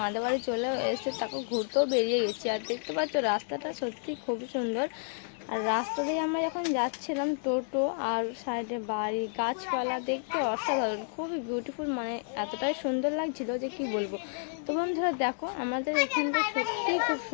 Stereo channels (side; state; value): right; silent; digital silence